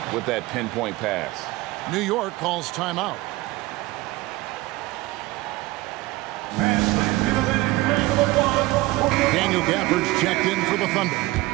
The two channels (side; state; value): left; quieter; 19.6 dB